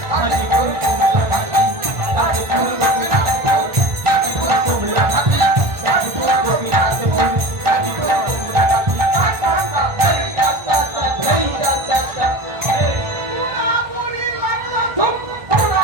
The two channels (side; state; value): left; late; 1.4 ms